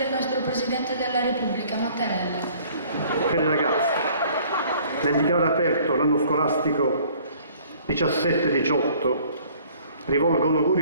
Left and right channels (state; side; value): inverted; both; correlation -0.56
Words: nostro Presidente della Repubblica, Mattarella. Cari ragazzi, nel dichiarare aperto l'anno scolastico 17-18 rivolgo un